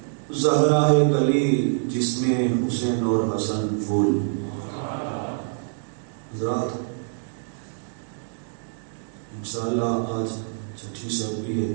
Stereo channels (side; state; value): left; silent; digital silence